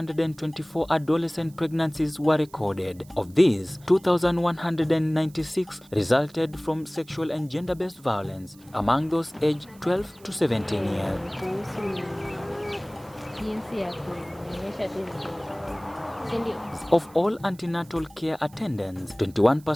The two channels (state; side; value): noise; right; hiss, 26 dB below the sound